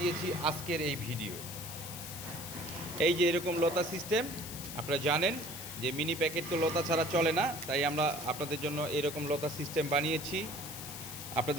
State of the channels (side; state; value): left; noise; hiss, 9 dB below the sound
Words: আজকের এই ভিডিও। এই যে এরকম লতা সিস্টেম, আপনারা জানেন যে মিনি প্যাকেট তো লতা ছাড়া চলে না, তাই আমরা আপনাদের জন্য এরকম লতা সিস্টেম বানিয়েছি।